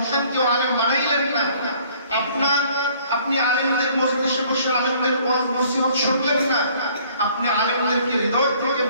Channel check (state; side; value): inverted; both; correlation -0.58